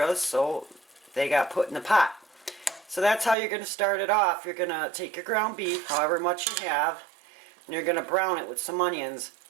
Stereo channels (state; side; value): drops out; left; at 3.4 s